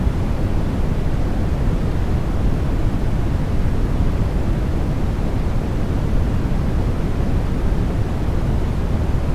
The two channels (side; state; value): both; identical; correlation 1.00